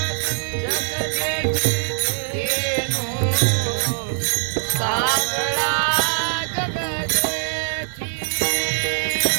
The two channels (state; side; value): silent; left; 64 dB below the other